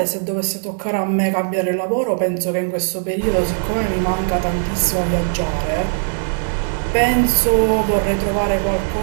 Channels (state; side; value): silent; left; 67 dB below the other